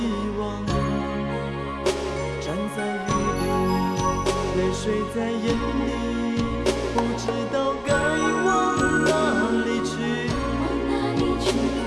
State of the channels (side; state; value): both; identical; correlation 1.00